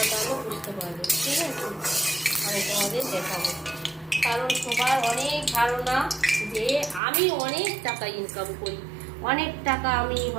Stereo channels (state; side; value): drops out; left; at 7.0 s